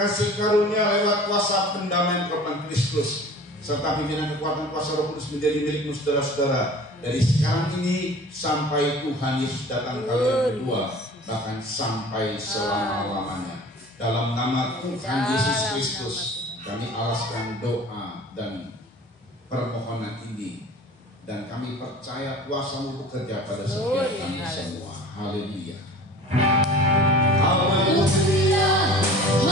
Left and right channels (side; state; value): both; normal; correlation 0.42